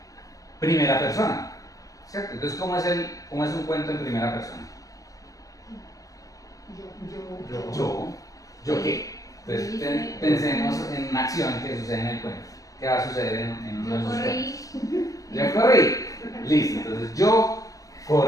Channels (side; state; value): right; late; 0.17 ms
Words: Primera persona, ¿cierto? Entonces, ¿cómo es un cuento en primera persona? ¿Yo qué? Entonces, pensemos en una acción que sucede en el cuento. ¿Qué va a suceder en uno de esos cuentos? Yo corrí. Listo, entonces yo